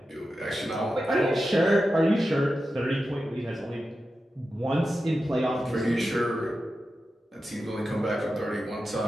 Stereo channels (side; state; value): both; normal; correlation 0.91